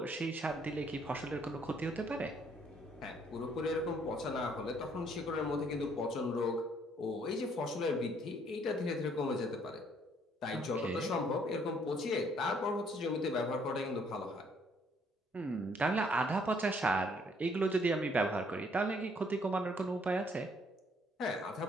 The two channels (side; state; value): both; normal; correlation 0.65